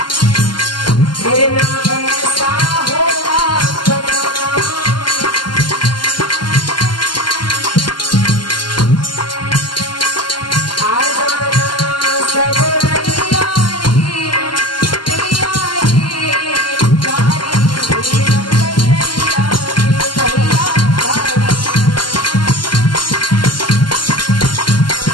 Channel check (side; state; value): right; late; 0.71 ms